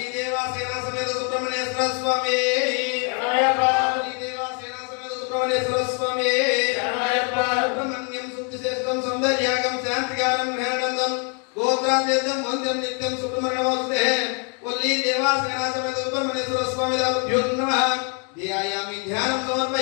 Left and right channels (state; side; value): quieter; right; 38.3 dB